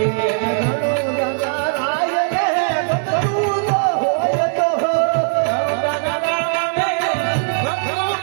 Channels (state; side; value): silent; left; digital silence